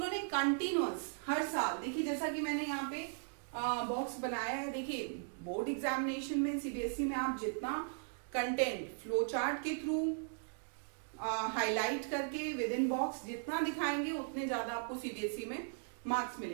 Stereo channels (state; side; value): silent; left; digital silence